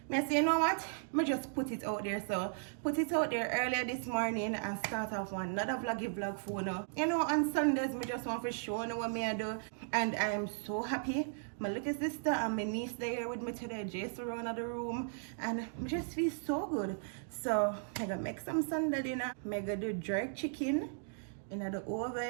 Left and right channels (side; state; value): left; silent; digital silence